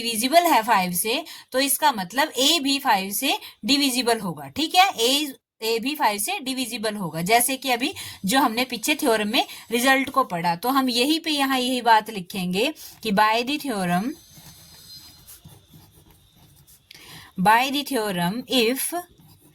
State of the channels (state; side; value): identical; both; correlation 1.00